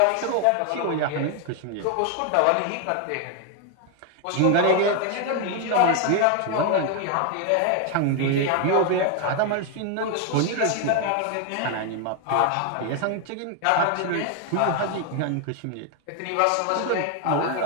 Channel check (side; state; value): both; different; correlation 0.01